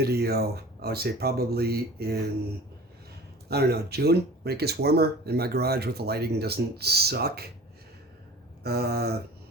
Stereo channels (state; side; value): normal; both; correlation 0.42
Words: I would say probably in, I don't know, June, when it gets warmer and my garage with the lighting doesn't suck.